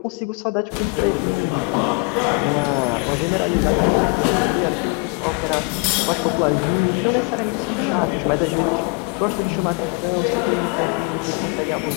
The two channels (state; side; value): quieter; right; 32.0 dB